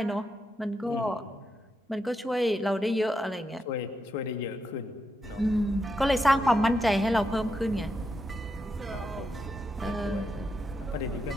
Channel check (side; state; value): both; normal; correlation 0.84